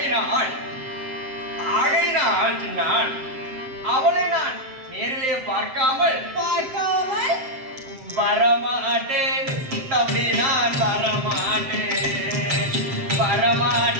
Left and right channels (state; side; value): late; left; 7.7 ms